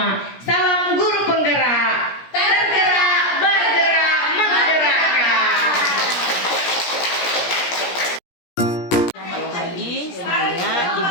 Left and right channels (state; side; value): late; right; 17 ms